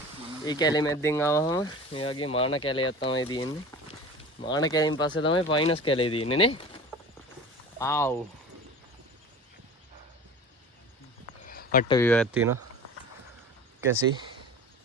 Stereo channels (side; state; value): both; normal; correlation 0.37